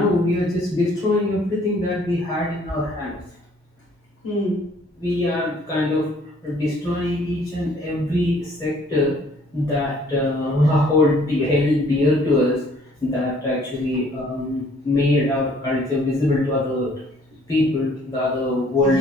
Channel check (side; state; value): both; normal; correlation 0.60